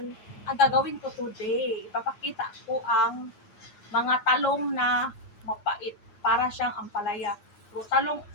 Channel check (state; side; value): late; right; 9.6 ms